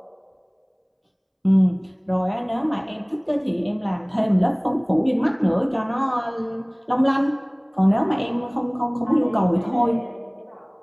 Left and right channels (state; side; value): identical; both; correlation 1.00